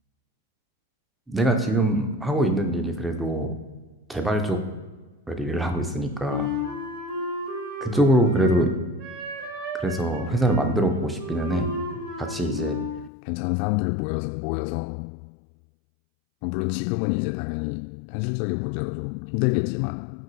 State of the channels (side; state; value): right; drops out; at 13.1 s